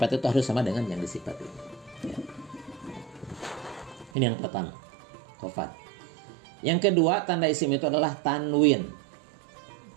itu harus sama dengan yang disifati. Ya. Ini yang pertama, qafat. Yang kedua, tanda isim itu adalah tanwin.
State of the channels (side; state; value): left; drops out; at 4.1 s